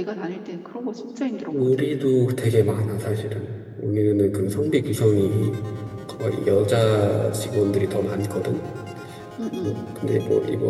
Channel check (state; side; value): identical; both; correlation 1.00